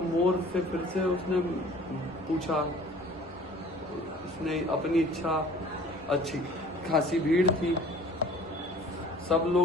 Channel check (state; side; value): normal; both; correlation 0.49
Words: मोर से फिर से उसने पूछा। उसने अपनी इच्छा, अच्छी खासी भीड़ थी। सब